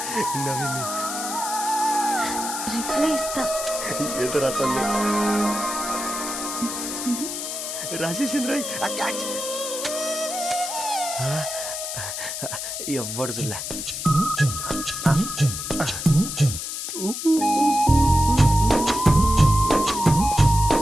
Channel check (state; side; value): noise; left; hiss, 5 dB below the sound